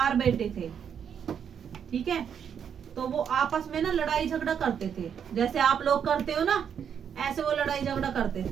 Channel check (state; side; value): quieter; left; 7.9 dB